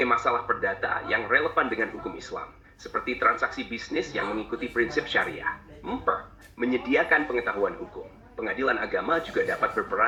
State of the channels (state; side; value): identical; both; correlation 1.00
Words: masalah perdata yang relevan dengan hukum Islam, seperti transaksi bisnis yang mengikuti prinsip syariah. 4. Menyediakan pengetahuan hukum. Pengadilan agama juga dapat